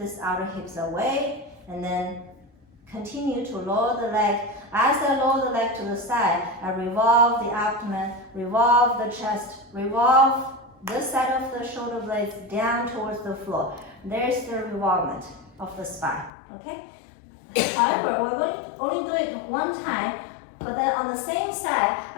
outer hips away and then continue to lower the leg. As I lower the leg to the side, I revolve the abdomen, revolve the chest, revolve this side of the shoulder blades down towards the floor. There's the revolvement of the spine, okay? However, we're going to only do it one time, but then on the same side,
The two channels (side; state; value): right; drops out; at 16.3 s